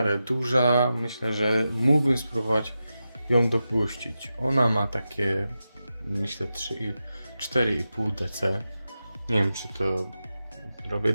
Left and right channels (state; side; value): inverted; both; correlation -0.91